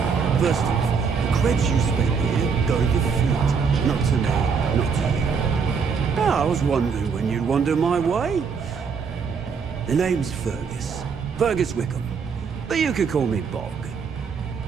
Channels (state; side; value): quieter; left; 5.8 dB